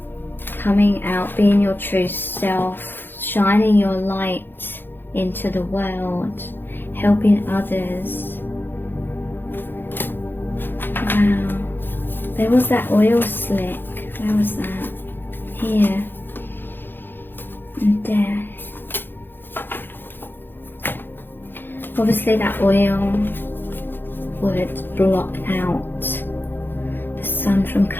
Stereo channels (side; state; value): right; late; 0.099 ms